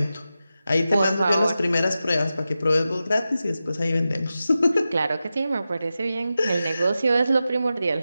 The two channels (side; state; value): both; inverted; correlation -0.92